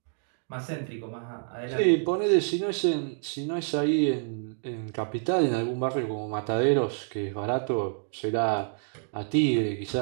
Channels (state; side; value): silent; left; digital silence